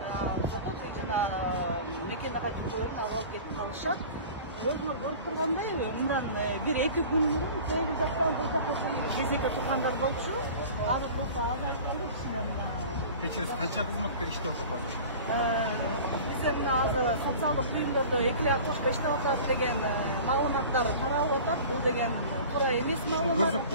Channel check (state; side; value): inverted; both; correlation -0.40